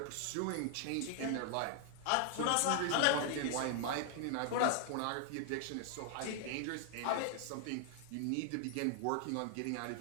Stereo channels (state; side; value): different; both; correlation 0.00